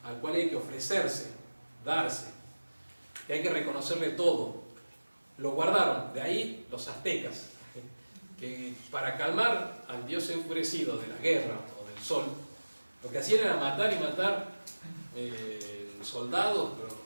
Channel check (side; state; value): both; inverted; correlation -1.00